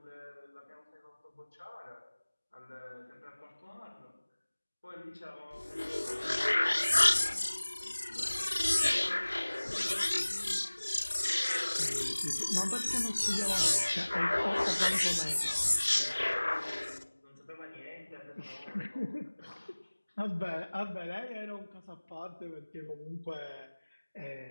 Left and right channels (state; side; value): inverted; both; correlation -1.00